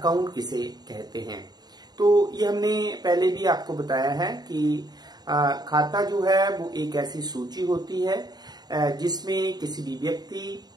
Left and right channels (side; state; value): left; late; 0.20 ms